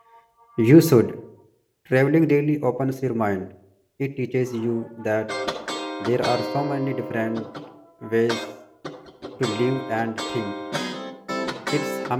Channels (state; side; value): identical; both; correlation 1.00